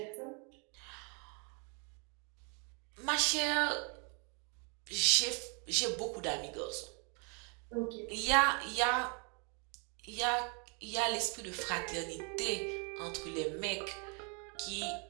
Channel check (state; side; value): quieter; left; 36.3 dB